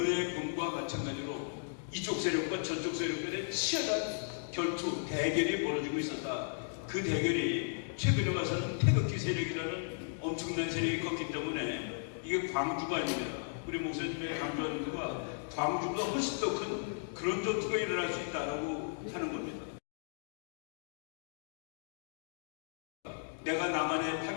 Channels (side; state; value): right; silent; digital silence